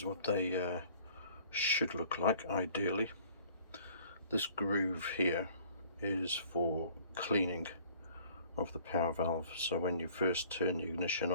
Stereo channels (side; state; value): both; inverted; correlation -0.54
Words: what they should look like ideally. This groove here is for cleaning of the power valve. So when you first turn the ignition